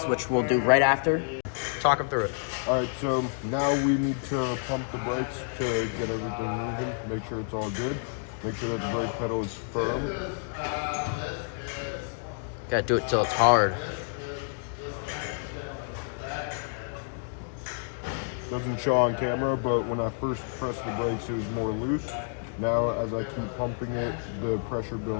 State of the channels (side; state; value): right; silent; digital silence